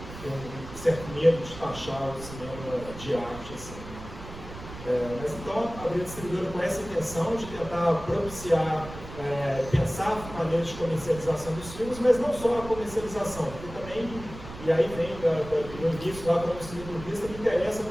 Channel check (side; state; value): right; noise; rumble, 13 dB below the sound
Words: um certo medo de taxar o cinema de arte, assim. Mas então, abrir a distribuidora com essa intenção de tentar propiciar, pensar maneiras de comercialização dos filmes, mas não só a comercialização, porque também, e aí vem no início, lá como distribuidorista, me interessa